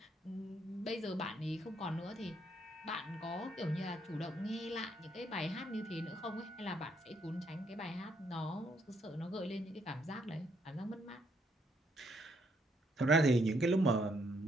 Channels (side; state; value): both; normal; correlation 0.73